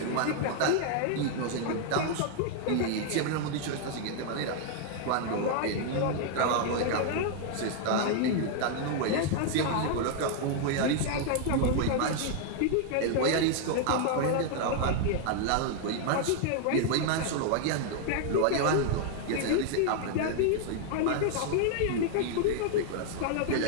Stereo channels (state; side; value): different; both; correlation 0.00